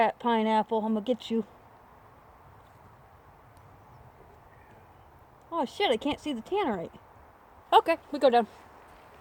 pineapple? I'm gonna get you. Oh shit, I can't see the tannerite. Okay, we go down.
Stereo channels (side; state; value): both; identical; correlation 1.00